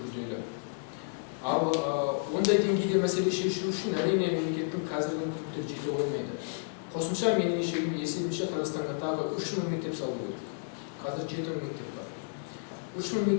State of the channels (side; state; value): right; silent; digital silence